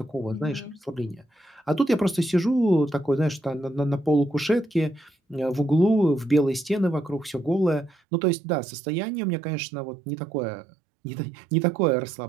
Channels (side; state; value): left; drops out; at 8.0 s